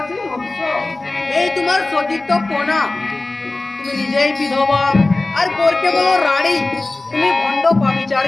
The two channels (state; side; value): quieter; right; 3.1 dB